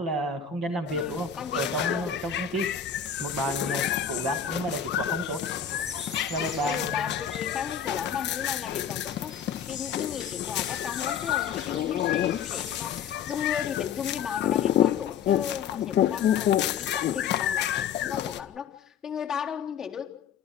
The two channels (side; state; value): right; quieter; 7.6 dB